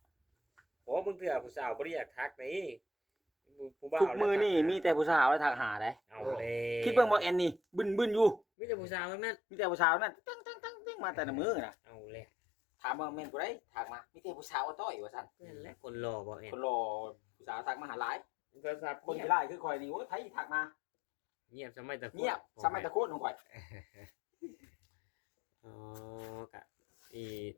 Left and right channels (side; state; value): right; drops out; at 8.4 s